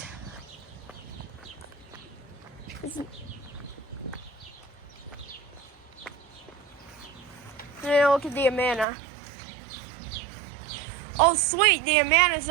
now look at the Amana. Oh sweet, the Amana is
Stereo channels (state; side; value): drops out; left; at 8.8 s